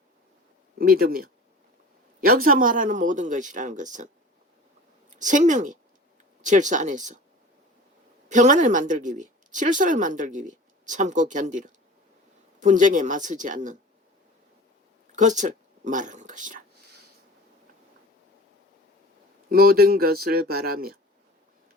믿으며, 여기서 말하는 모든 것이라는 것은 생명의 질서 안에서 평안을 만들기 위해, 질서를 만들기 위해 참고 견디는, 분쟁에 맞서지 않는 것을 말하는 것이라. 모든 것을 바라며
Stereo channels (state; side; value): normal; both; correlation 0.40